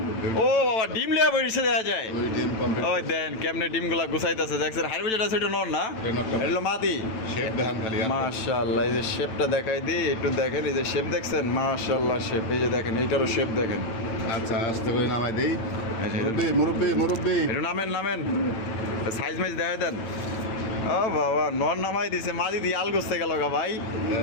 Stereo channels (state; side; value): late; right; 9.1 ms